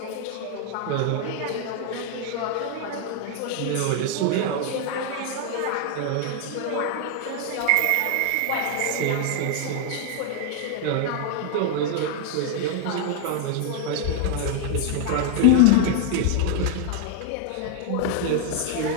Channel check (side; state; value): both; different; correlation 0.00